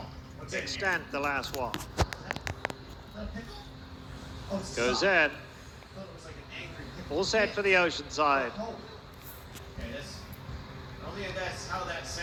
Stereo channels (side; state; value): both; identical; correlation 1.00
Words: Extent the last one. Goes in. All set for the Oceanside. That's how that